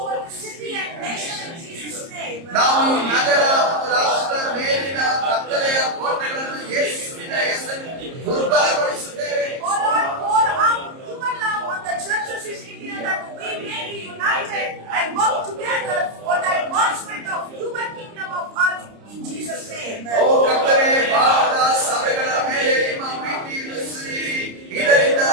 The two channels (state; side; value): late; left; 30 ms